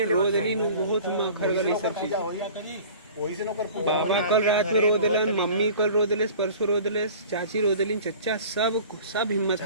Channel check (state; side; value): inverted; both; correlation -0.43